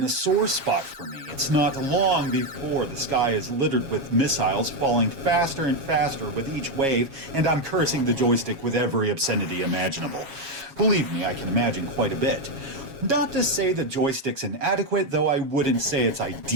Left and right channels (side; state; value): left; late; 7.3 ms